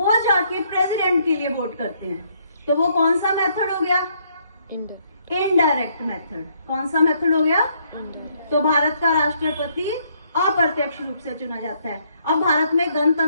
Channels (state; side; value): inverted; both; correlation -0.69